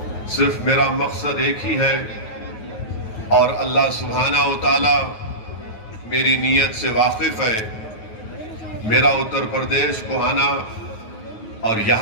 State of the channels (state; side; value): late; right; 9.4 ms